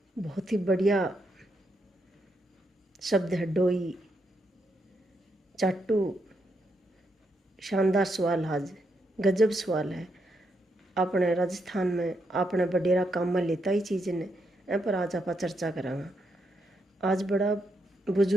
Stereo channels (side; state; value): both; normal; correlation 0.80